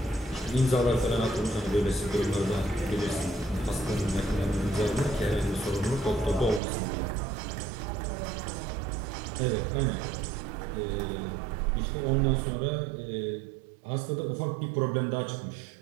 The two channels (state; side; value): drops out; left; at 6.6 s